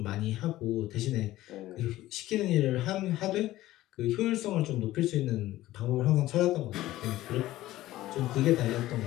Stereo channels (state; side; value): quieter; right; 15.7 dB